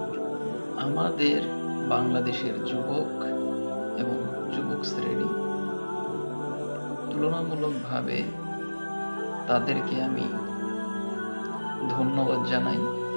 আমাদের বাংলাদেশের যুবক এবং যুবক শ্রেণী তুলনামূলকভাবে তাদেরকে আমি ধন্যবাদ জানাই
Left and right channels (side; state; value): both; inverted; correlation -1.00